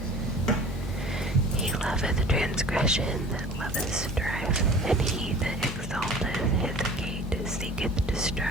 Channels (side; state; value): both; normal; correlation 0.44